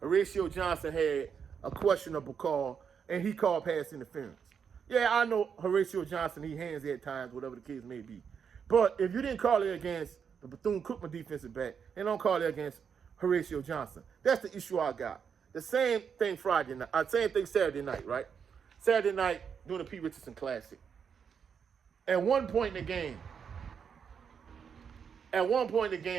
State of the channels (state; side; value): quieter; left; 6.9 dB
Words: Horatio Johnson had a questionable call, and he called pass interference. Yeah, I know Horatio Johnson, he handsy at times, whatever the case may be. But if you didn't call it against the Bethune-Cookman defensive back, and don't call it against Horatio Johnson, that's the issue I got. The same thing Friday night, same thing Saturday night, right? Saturday night, doing the Pete Richardson Classic. At one point in the